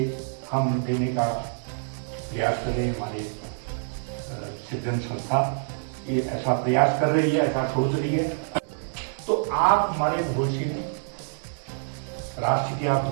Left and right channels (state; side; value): silent; left; digital silence